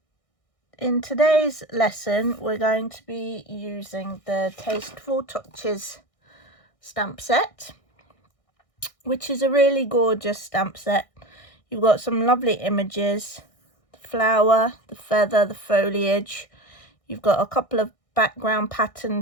in today's lesson, we're going to be using the Tasteful Touches Stamp Set, which is a really gorgeous stamp set. You've got some lovely images, the flower, the feather, the foliage. You've got a couple of background pattern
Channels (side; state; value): right; late; 1.6 ms